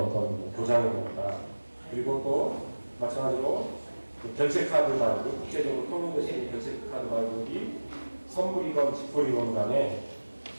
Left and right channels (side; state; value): both; inverted; correlation -1.00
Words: 보장이 됩니다. 그리고 또 마찬가지로 그 결제카드 발급, 국제적으로 통용되시는 결제카드 발급이 선불이건 직불이건 간에